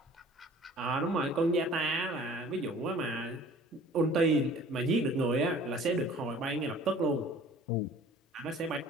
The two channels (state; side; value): normal; both; correlation 0.49